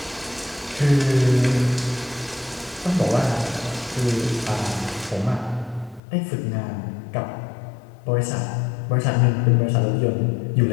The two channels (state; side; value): drops out; right; at 6.0 s